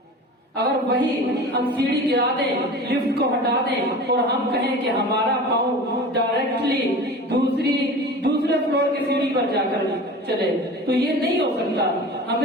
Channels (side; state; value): both; normal; correlation 0.36